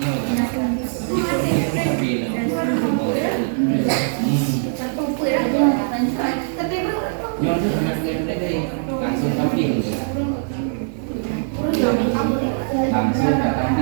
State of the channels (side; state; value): left; silent; digital silence